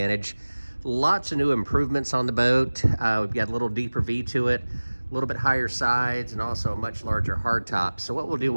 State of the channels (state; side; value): inverted; both; correlation -1.00